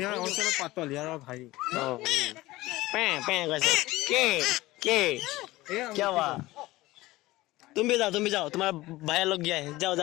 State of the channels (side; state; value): right; quieter; 18.6 dB